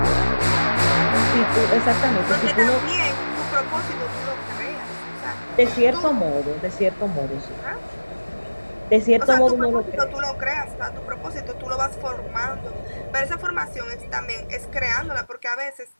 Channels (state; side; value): inverted; both; correlation -1.00